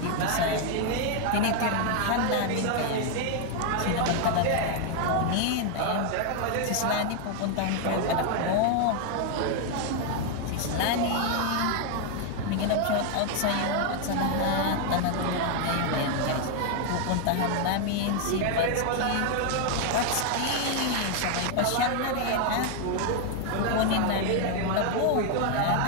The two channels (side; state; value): both; different; correlation 0.00